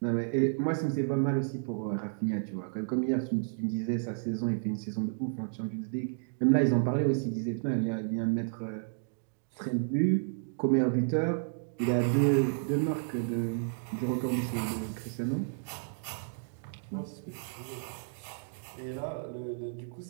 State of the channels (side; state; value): left; silent; digital silence